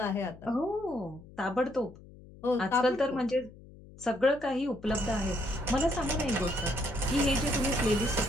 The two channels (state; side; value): noise; left; hum, 20 dB below the sound